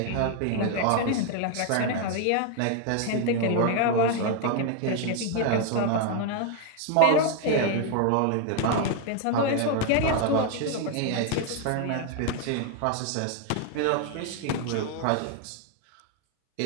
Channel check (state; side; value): different; both; correlation 0.00